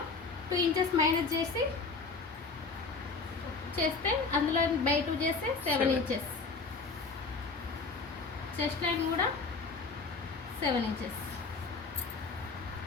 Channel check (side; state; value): right; quieter; 4.2 dB